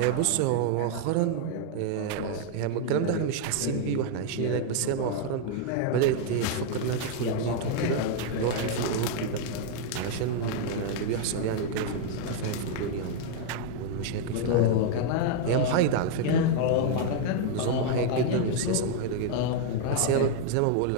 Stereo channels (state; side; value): different; both; correlation 0.00